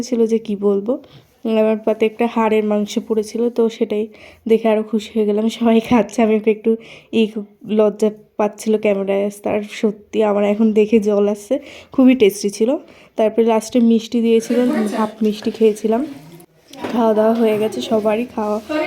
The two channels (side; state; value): both; identical; correlation 1.00